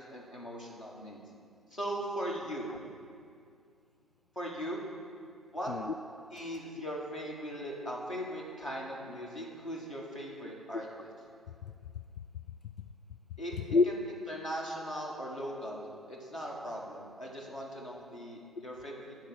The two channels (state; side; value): normal; both; correlation 0.56